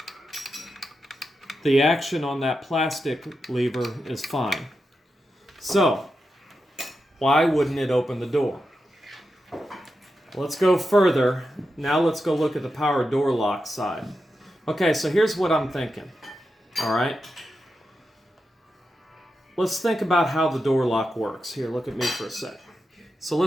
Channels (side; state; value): both; normal; correlation 0.89